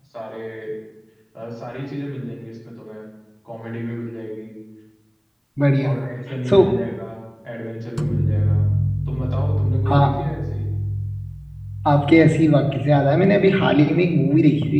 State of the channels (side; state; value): both; identical; correlation 1.00